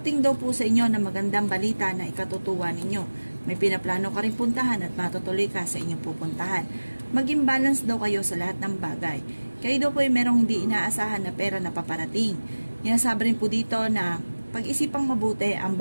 daw po sa inyo na magandang balita na ikatutuwa ninyo. May pinaplano ka rin puntahan at matutuloy ka sa inyong pupuntahan. Maging balance daw kayo sa lahat ng bagay. Kayo daw po ay merong hindi inaasahan na pera na paparating. Sabi rin po dito na pag-isipang mabuti ang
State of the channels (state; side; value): inverted; both; correlation -1.00